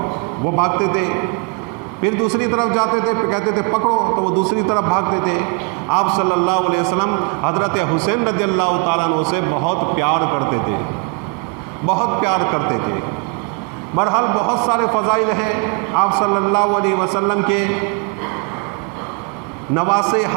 وہ بھاگتے تھے. پھر دوسری طرف جاتے تھے، پھر کہتے تھے پکڑو تو وہ دوسری طرف بھاگتے تھے. آپ صلی اللہ علیہ وسلم حضرت حسین رضی اللہ تعالیٰ عنہ سے بہت پیار کرتے تھے، بہت پیار کرتے تھے. بہرحال بہت سارے فضائل ہیں آپ صلی اللہ علیہ وسلم کے نواسے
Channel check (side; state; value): left; quieter; 33.1 dB